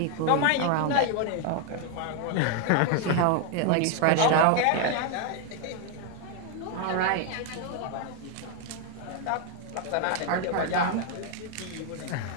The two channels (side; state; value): both; different; correlation 0.01